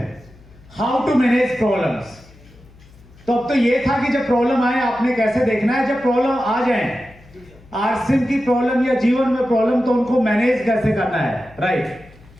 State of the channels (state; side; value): noise; left; hum, 25 dB below the sound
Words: How to manage problems. तो अब तो ये था कि जब प्रॉब्लम आए आपने कैसे देखना है। जब प्रॉब्लम आ जाए, आरसीएम की प्रॉब्लम या जीवन में प्रॉब्लम, तो उनको मैनेज कैसे करना है। Right.